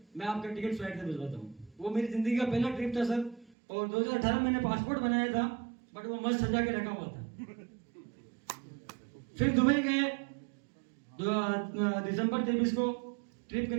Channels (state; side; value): drops out; left; at 3.6 s